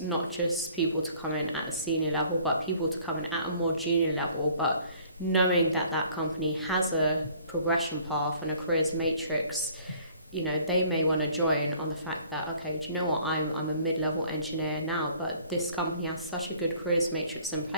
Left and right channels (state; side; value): inverted; both; correlation -0.55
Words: not just people to come in at a senior level, but people to come in at a more junior level, but knowing that that company has a progression path and a careers matrix. You know, they may want to join on the fact that, okay, do you know what, I'm a mid-level engineer now, but this company has such a good careers matrix in